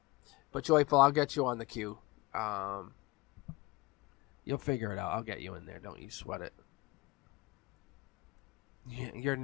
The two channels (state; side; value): quieter; right; 22.9 dB